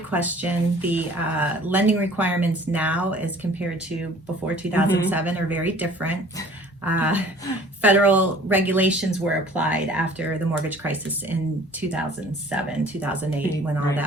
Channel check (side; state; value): both; normal; correlation 0.50